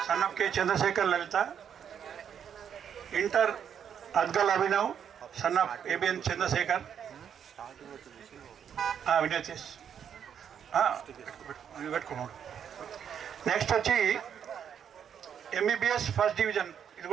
Son of K Chandrashekar Lalitha. Inter అద్గల్ Abhinav, son of ABN Chandrashekar. వినయతేష్ పెట్టుకున్నాడు. నెక్స్ట్ వచ్చి ఎంబీబీఎస్ ఫస్ట్ డివిజన్, ఇది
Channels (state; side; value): quieter; left; 8.3 dB